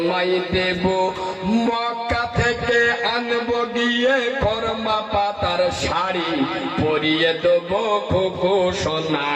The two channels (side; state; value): both; identical; correlation 1.00